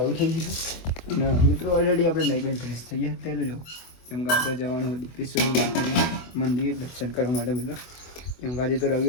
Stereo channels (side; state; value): right; late; 24 ms